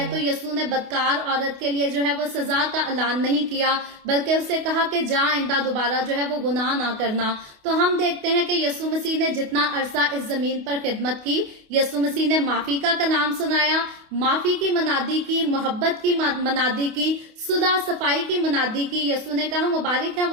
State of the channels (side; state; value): left; late; 28 ms